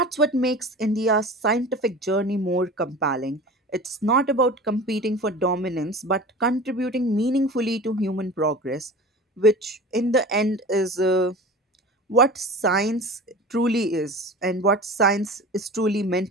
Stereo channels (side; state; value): both; normal; correlation 0.36